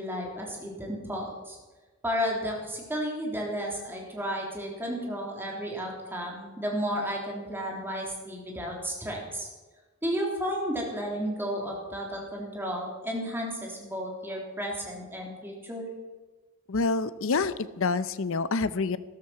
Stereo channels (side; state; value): both; normal; correlation 0.25